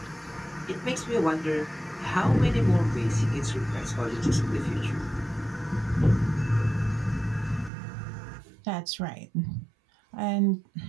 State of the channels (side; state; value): left; drops out; at 7.7 s